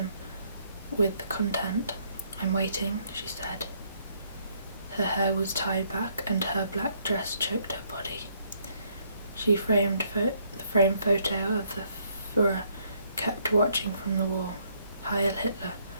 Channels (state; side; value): inverted; both; correlation -0.69